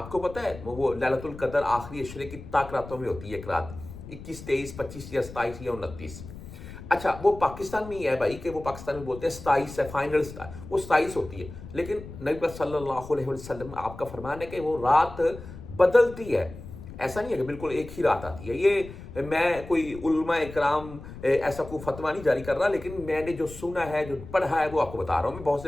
کو پتہ ہے وہ لیلۃ القدر آخری عشرے کی طاق راتوں میں ہوتی ہے، ایک رات 21 23 25 یا 27 یا 29۔ اچھا وہ پاکستان میں ہی ہے بھائی، کہ وہ پاکستان میں بولتے ہیں 27 ہے، فائنل وہ 27 ہوتی ہے، لیکن نبی صلی اللہ علیہ وسلم آپ کا فرمان ہے کہ وہ رات بدلتی ہے، ایسا نہیں ہے کہ بالکل ایک ہی رات آتی ہے۔ یہ میں کوئی علماء اکرام ایسا کوئی فتویٰ نہیں جاری کر رہا، لیکن میں نے جو سنا ہے جو پڑھا ہے وہ آپ کو بتا رہا ہوں میں، بہت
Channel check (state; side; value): noise; left; rumble, 14 dB below the sound